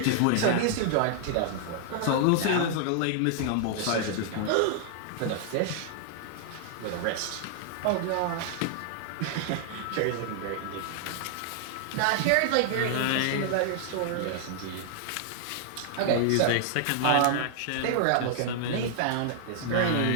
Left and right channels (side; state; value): both; different; correlation -0.01